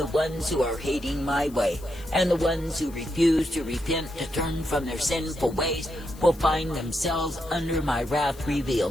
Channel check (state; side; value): noise; left; hiss, 22 dB below the sound